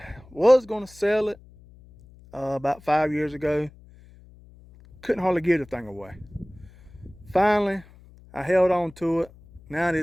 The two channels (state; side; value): noise; left; hum, 24 dB below the sound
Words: was gonna sell it about 5 years ago. Couldn't hardly give the thing away. Finally, I held on to it. Now